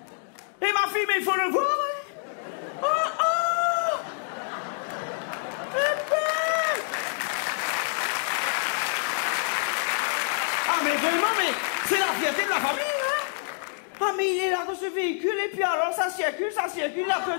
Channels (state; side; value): silent; right; digital silence